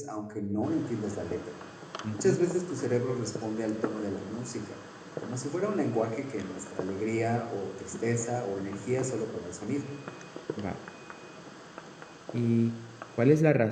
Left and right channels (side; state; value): both; identical; correlation 1.00